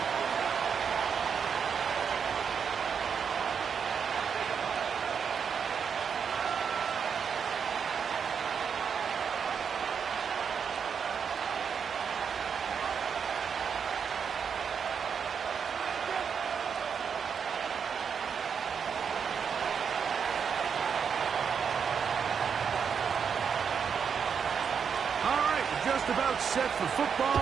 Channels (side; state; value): left; quieter; 6.7 dB